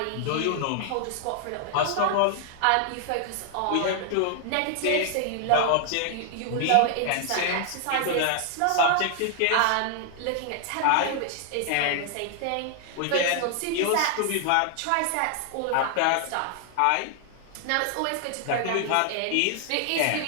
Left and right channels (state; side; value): different; both; correlation 0.00